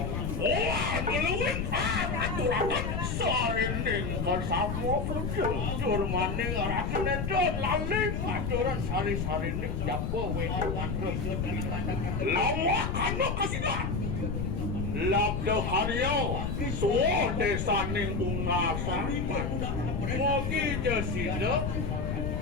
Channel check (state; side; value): noise; left; rumble, 1 dB below the sound